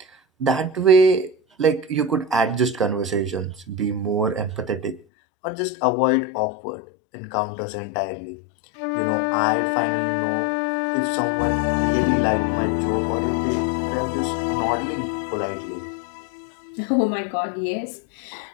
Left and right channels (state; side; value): drops out; right; at 5.0 s